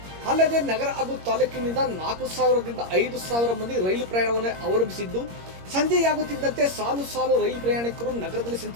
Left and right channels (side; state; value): left; late; 21 ms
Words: ಅಲ್ಲದೆ ನಗರ ಹಾಗೂ ತಾಲೂಕಿನಿಂದ 4,000ರಿಂದ 5,000 ಮಂದಿ ರೈಲು ಪ್ರಯಾಣವನ್ನು ಅವಲಂಬಿಸಿದ್ದು, ಸಂಜೆಯಾಗುತ್ತಿದ್ದಂತೆ ಸಾಲು ಸಾಲು ರೈಲು ಪ್ರಯಾಣಿಕರು ನಗರದಲ್ಲಿ